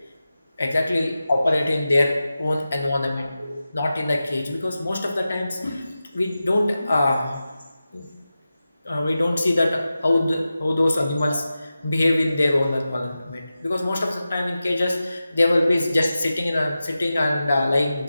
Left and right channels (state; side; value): inverted; both; correlation -0.93